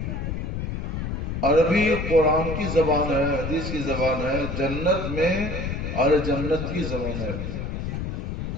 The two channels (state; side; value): noise; left; rumble, 3 dB below the sound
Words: عربی قرآن کی زبان ہے، حدیث کی زبان ہے، جنت میں اور جنت کی زبان ہے،